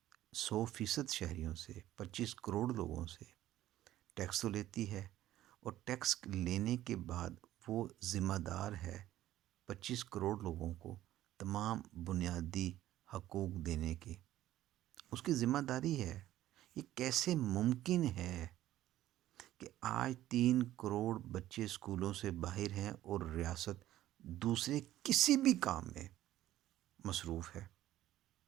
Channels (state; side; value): quieter; left; 13.9 dB